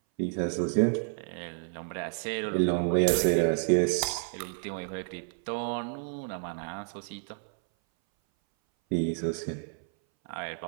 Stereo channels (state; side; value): silent; left; 58 dB below the other